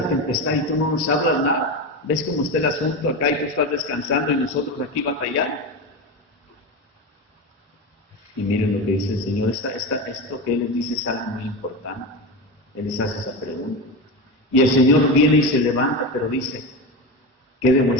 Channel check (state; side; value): normal; both; correlation 0.20